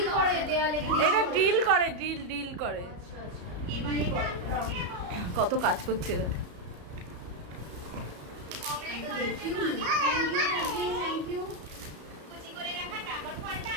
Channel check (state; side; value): late; left; 34 ms